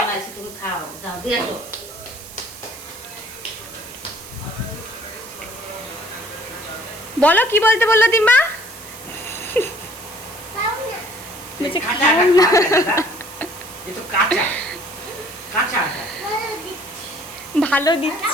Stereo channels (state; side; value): noise; right; hiss, 15 dB below the sound